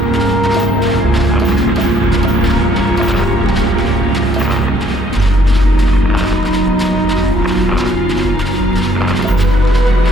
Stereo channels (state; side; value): normal; both; correlation 0.64